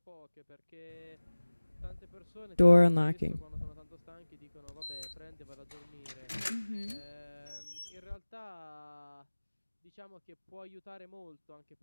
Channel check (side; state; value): both; inverted; correlation -1.00